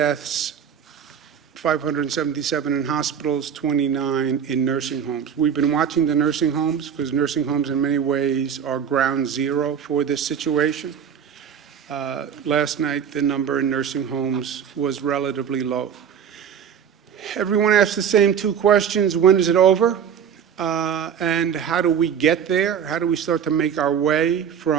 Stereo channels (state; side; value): quieter; left; 8.1 dB